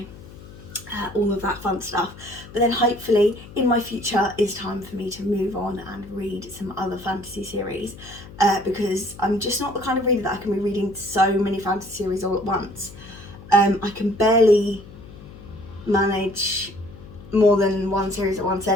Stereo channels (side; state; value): left; noise; hum, 18 dB below the sound